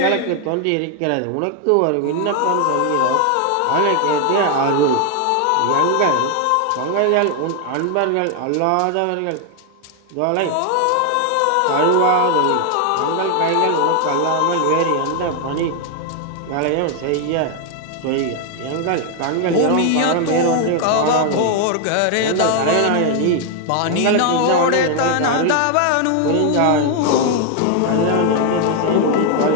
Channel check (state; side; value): different; both; correlation 0.01